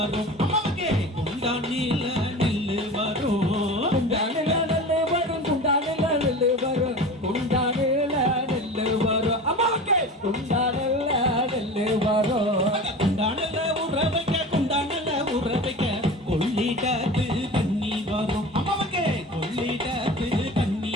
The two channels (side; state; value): both; normal; correlation 0.34